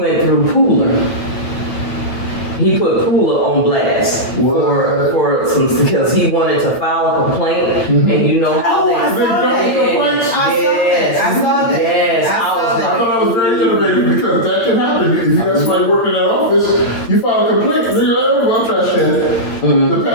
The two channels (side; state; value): right; late; 8.8 ms